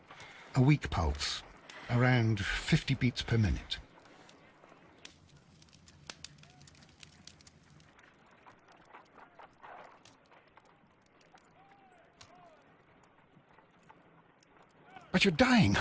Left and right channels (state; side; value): identical; both; correlation 1.00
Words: A weak pulse, around 50 beats per minute. But you're dying,